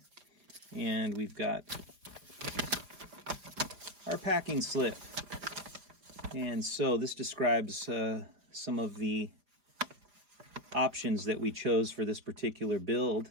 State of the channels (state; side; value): late; left; 4.9 ms